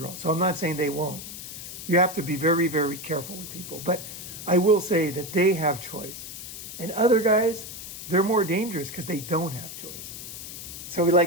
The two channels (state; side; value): noise; left; hiss, 10 dB below the sound